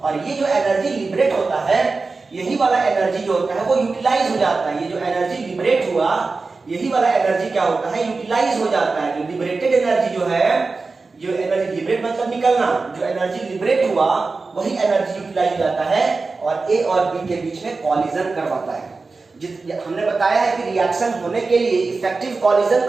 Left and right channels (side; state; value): left; quieter; 4.0 dB